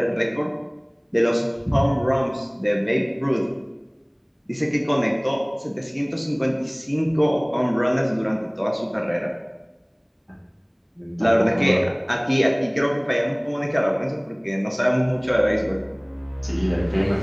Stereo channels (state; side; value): identical; both; correlation 1.00